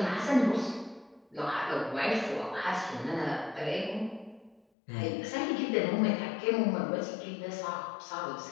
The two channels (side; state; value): right; drops out; at 4.6 s